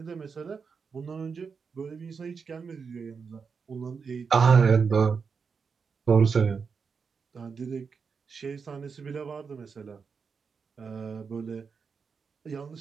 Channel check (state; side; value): quieter; left; 5.6 dB